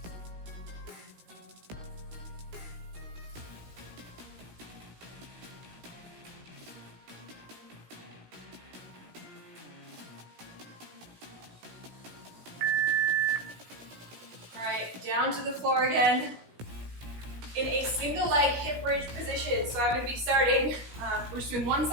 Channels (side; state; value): left; late; 17 ms